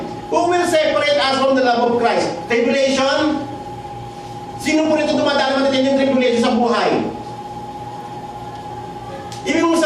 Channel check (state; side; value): identical; both; correlation 1.00